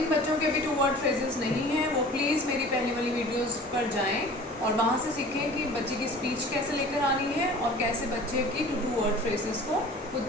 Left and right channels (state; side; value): normal; both; correlation 0.43